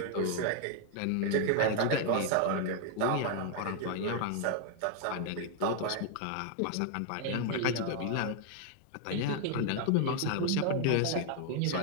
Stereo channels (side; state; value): both; different; correlation 0.00